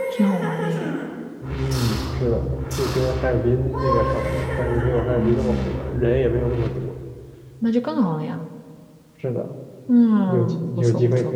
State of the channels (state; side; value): identical; both; correlation 1.00